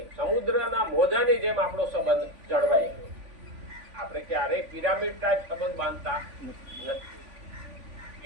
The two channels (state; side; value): late; left; 3.5 ms